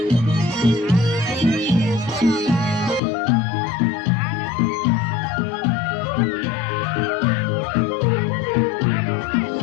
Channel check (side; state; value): right; drops out; at 3.0 s